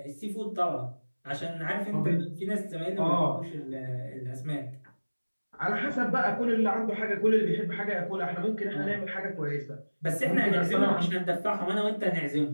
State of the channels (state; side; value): inverted; both; correlation -1.00